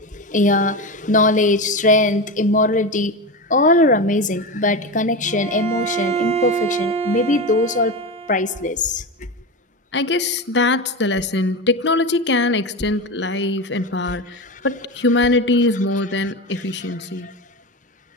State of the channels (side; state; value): both; normal; correlation 0.20